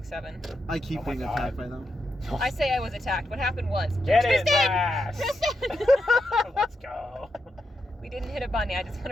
7. I keep Oh my being God. attacked by them. I say I was attacked. What happened was... Get it, Tristan! Vash! Tristan! Let's go. We didn't hit a bunny. I just want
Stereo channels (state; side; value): normal; both; correlation 0.85